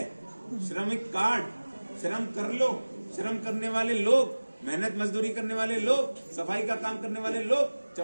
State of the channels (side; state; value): both; inverted; correlation -1.00